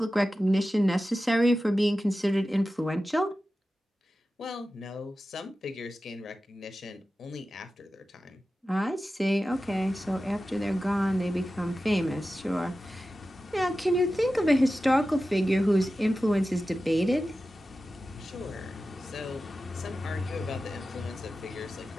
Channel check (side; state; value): both; normal; correlation 0.94